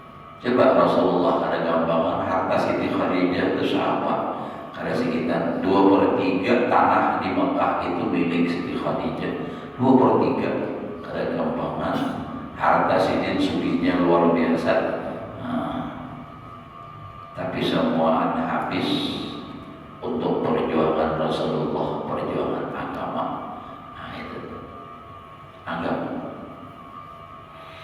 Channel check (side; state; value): both; identical; correlation 1.00